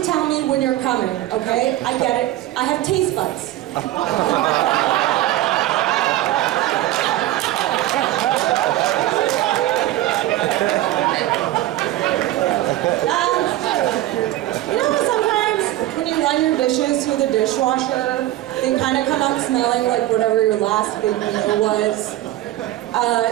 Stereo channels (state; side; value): quieter; left; 15.0 dB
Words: tell me when you're coming, okay? I get it. I have taste buds. Sometimes when you run your dishes through the dishwasher, they kind of come out smelling like whatever your last big meal was.